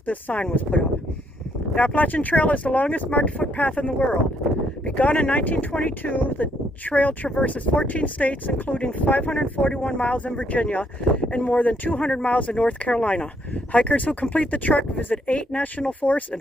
this sign was put up. The Appalachian Trail is the longest marked footpath in the world. Begun in 1922, the trail traverses 14 states, including 541 miles in Virginia and more than 200 miles in North Carolina. Hikers who complete the trek visit 8 national forests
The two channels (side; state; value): both; normal; correlation 0.72